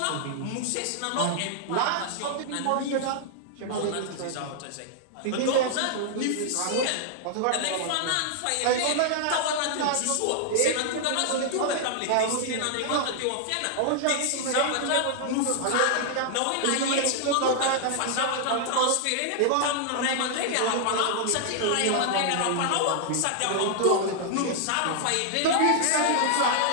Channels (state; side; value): different; both; correlation -0.01